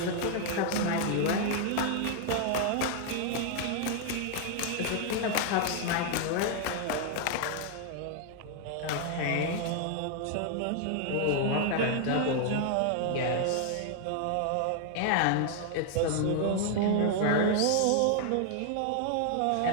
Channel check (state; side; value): different; both; correlation 0.00